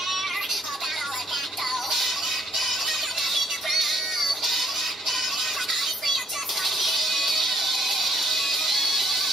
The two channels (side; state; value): both; normal; correlation 0.66